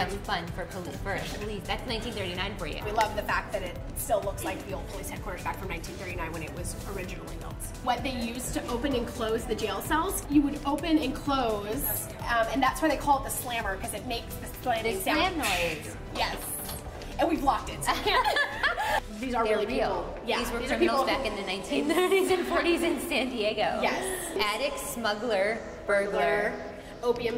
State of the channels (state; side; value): identical; both; correlation 1.00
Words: too much fun for police. That's 1939 for you. We love the fact that it still looks like the old police headquarters back from 1939 when it was originally built. What they used to open and close the jail cells, you would open and close, and that's why they call it the slammer, because it makes the slamming sound. Slam noise. Yes. And we've locked it, so we can't. These are really real. People. Yeah, these were criminals back in the 1930s and 40s in San Diego. Yes. Addict, smuggler, burglar,